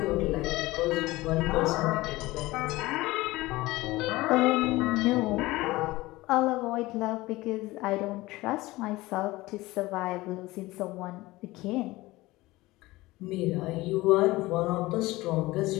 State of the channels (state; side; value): quieter; right; 19.6 dB